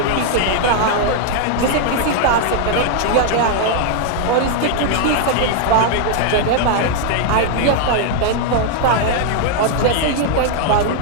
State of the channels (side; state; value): both; different; correlation 0.00